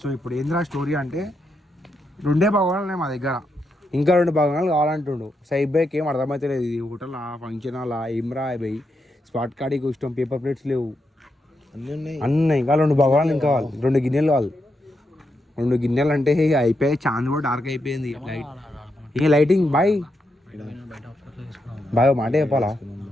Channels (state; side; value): normal; both; correlation 0.83